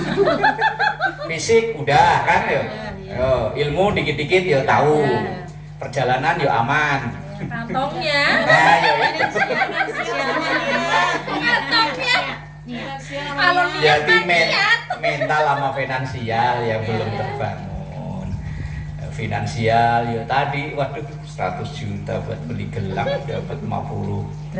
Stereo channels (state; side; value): identical; both; correlation 1.00